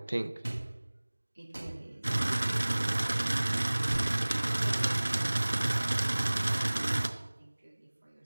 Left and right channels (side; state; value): both; inverted; correlation -1.00